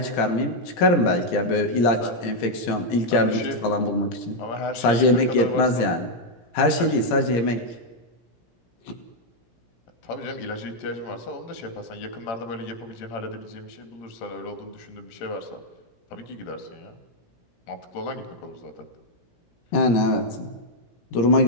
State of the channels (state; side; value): late; right; 17 ms